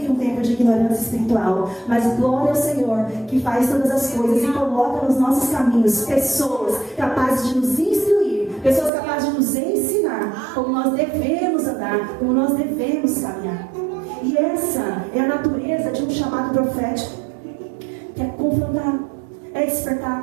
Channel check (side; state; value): left; drops out; at 8.9 s